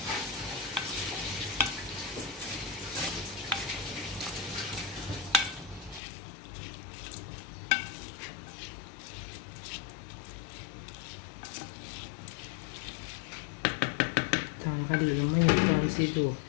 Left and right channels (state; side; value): drops out; right; at 6.0 s